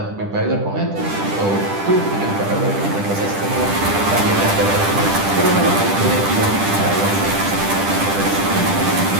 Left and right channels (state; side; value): late; left; 10 ms